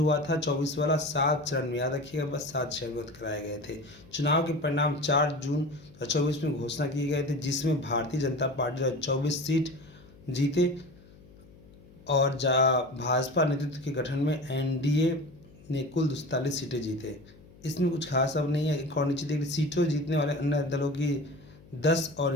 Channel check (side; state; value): left; noise; hum, 23 dB below the sound